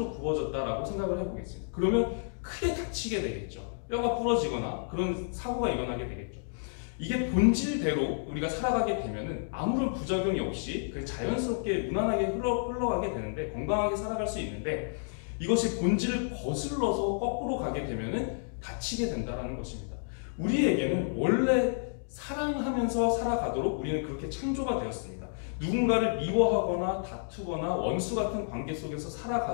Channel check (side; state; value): right; silent; digital silence